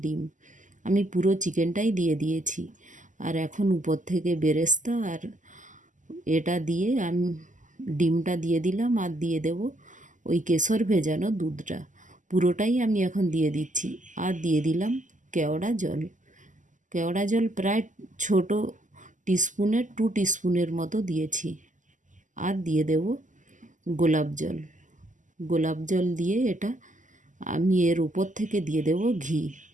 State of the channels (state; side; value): late; left; 0.37 ms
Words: ডিম। আমি পুরো চিকেনটাই দিয়ে দিয়েছি। আর এখন উপর থেকে বেরেস্তা আর এটা দিয়ে আমি ডিমটা দিয়ে দিলাম, আর দিয়ে দেব ওই কেশর ভেজানো দুধটা, পুরোটাই আমি এখন দিয়ে দিচ্ছি। আর দিয়ে দিলাম কেওড়া জল প্রায় ছোটো টিস্পুনের 2 টিস্পুনের মতো দিয়েছি। আর দিয়ে দেব গোলাপ জল দিয়ে এটা আমি এর উপর থেকে দিয়ে দেব